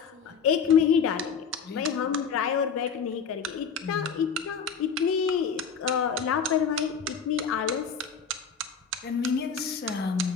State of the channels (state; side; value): quieter; right; 6.1 dB